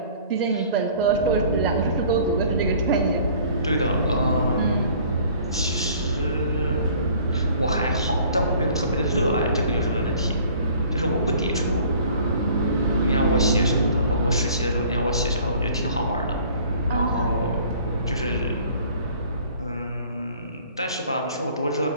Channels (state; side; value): inverted; both; correlation -0.52